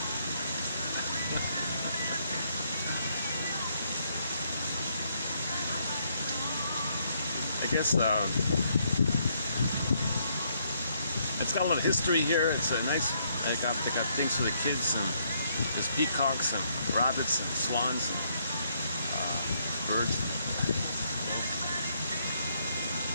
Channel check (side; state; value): both; inverted; correlation -0.72